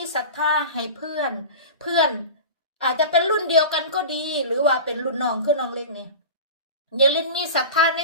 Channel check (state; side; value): inverted; both; correlation -0.31